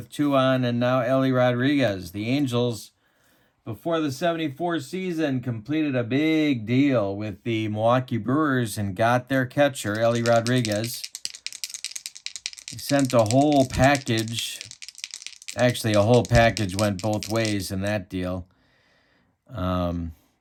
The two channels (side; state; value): both; identical; correlation 1.00